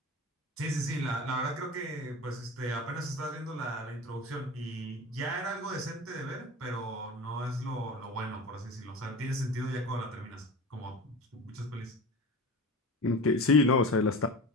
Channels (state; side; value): normal; both; correlation 0.32